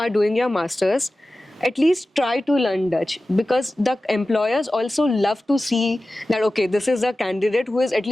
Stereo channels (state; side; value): normal; both; correlation 0.95